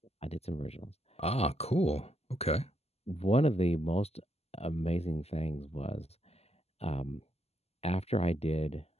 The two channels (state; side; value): late; right; 0.30 ms